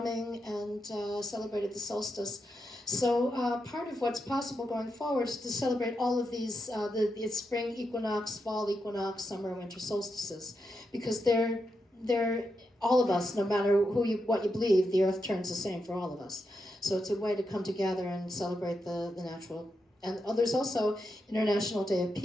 and celebrated the solstice. So part of what's possible going forward is to celebrate all of these, the spring equinox, fall equinox, summer, winter solstices, because they're all of us, no matter what you believe, the earth turns the same for all of us. So it's a way to come together and celebrate the natural. And there's also International Day of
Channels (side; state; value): both; normal; correlation 0.85